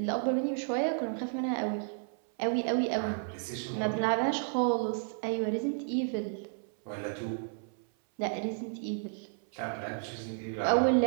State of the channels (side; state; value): left; silent; 56 dB below the other